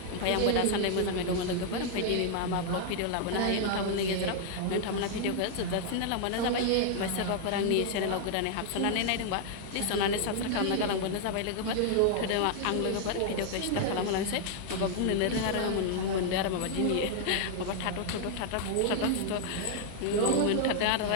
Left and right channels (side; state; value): both; different; correlation 0.00